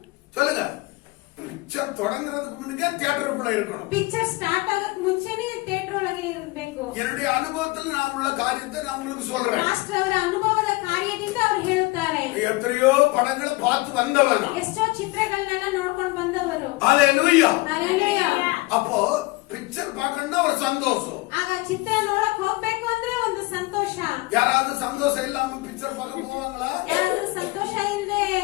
சொல்லுங்க. பிக்சர் தொடங்குறதுக்கு முன்னே தியேட்டருக்குள்ள இருக்கணும். ಪಿಕ್ಚರ್ ಸ್ಟಾರ್ಟ್ ಆಗಕ್ ಮುಂಚೆನೆ ಥಿಯೇಟರ್ ಒಳಗೆ ಇರಬೇಕು. என்னுடைய அனுபவத்தில் நான் உள்ள காரியத்தை நான் உங்களுக்கு சொல்றேன். ಮಾಸ್ಟರ್ ಅವರ ಅನುಭವದ ಕಾರ್ಯದಿಂದ ಅವರು ಹೇಳುತ್ತಾರೆ. எத்தனையோ படங்களை பார்த்து வந்தவன். ಎಷ್ಟೋ ಚಿತ್ರಗಳನ್ನೆಲ್ಲ ನೋಡ್ಕೊಂಡು ಬಂದವರು. ஹல்லேலூயா. ಹಲ್ಲೆಲೂಯಾ. அப்போ பிக்சர் பார்க்கணும்னா ஒரு சந்தோஷம். ಆಗ ಚಿತ್ರ ನೋಡಕ್ ಹೋಗ್ಬೇಕು ಅಂದ್ರೆ ಒಂದು ಸಂತೋಷ. யாராவது சந்தோஷம் இல்லாம பிக்சர் பார்க்க போவாங்களா? ಯಾರಾದ್ರೂ ಸಂತೋಷ ಇಲ್ಲದೆ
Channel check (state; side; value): quieter; right; 22.8 dB